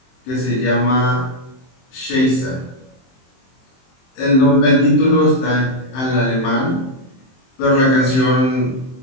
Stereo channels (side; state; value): right; late; 23 ms